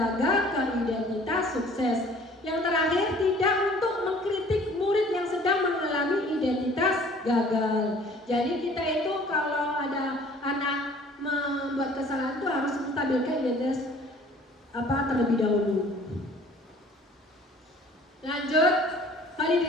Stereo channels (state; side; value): normal; both; correlation 0.52